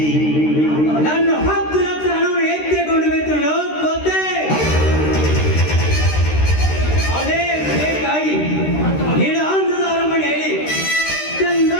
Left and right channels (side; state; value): right; late; 13 ms